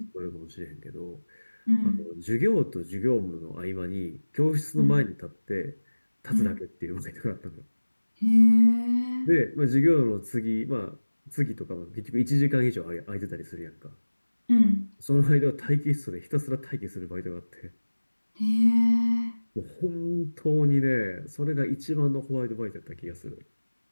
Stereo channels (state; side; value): inverted; both; correlation -1.00